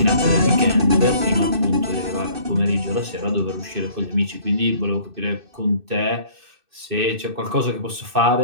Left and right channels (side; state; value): left; late; 2.6 ms